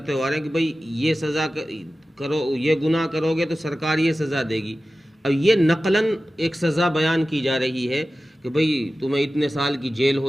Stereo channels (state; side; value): normal; both; correlation 0.95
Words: ہو رہے ہیں کہ بھئی یہ سزا کرو، یہ گناہ کرو گے تو سرکار یہ سزا دے گی. اب یہ نقلاً ایک سزا بیان کی جا رہی ہے کہ بھئی تمہیں اتنے سال کی جیل